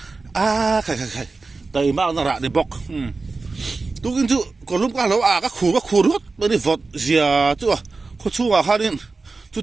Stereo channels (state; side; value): quieter; left; 3.9 dB